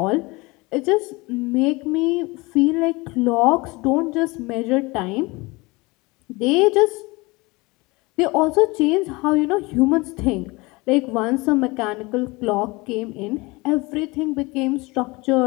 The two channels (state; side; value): quieter; right; 24.0 dB